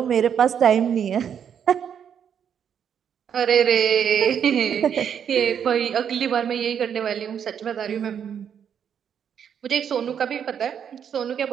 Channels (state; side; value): quieter; left; 8.2 dB